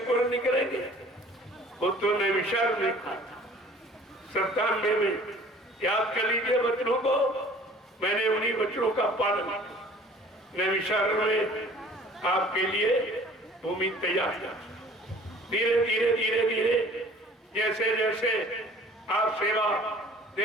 निकलेंगे, वो तो नैमिषारण्य में कहा था। 97 में याद कर लीजिए वचनों को, मैंने उन्हीं वचनों का पालन किया। नैमिषारण्य में आपके लिए भूमि तैयार किया। धीरे धीरे धीरे धीरे जैसे जैसे आप सेवा दे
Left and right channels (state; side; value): normal; both; correlation 0.50